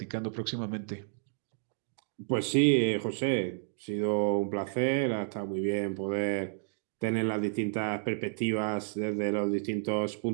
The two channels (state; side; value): silent; left; digital silence